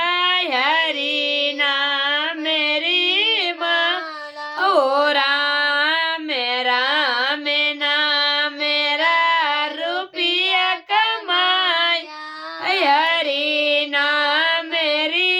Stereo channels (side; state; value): both; identical; correlation 1.00